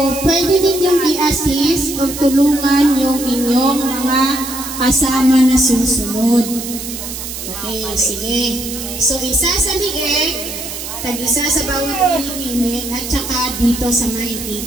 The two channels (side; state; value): right; noise; hiss, 8 dB below the sound